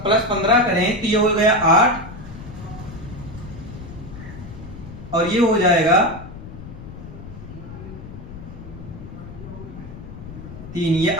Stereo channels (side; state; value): left; noise; rumble, 13 dB below the sound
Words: 15 करें तो ये हो गया 8 और ये हो जाएगा 3। ये